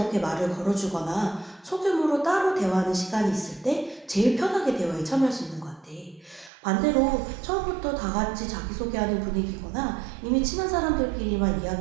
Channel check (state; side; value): drops out; left; at 6.5 s